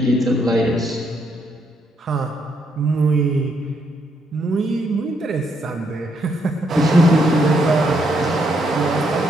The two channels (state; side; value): normal; both; correlation 0.75